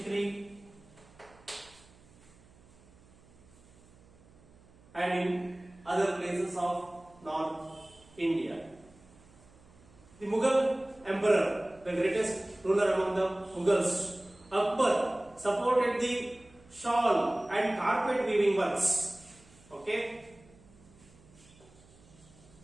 and in other places of North India. The Mughal emperor, the greatest ruler among the Mughals, Akbar, supported the shawl and carpet weaving works. Okay?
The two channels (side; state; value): right; noise; hum, 26 dB below the sound